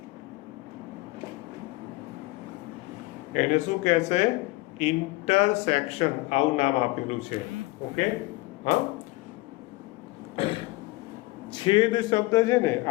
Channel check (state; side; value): quieter; right; 21.2 dB